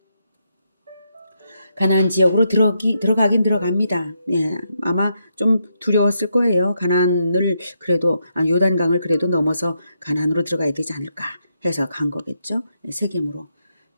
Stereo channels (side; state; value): both; inverted; correlation -0.80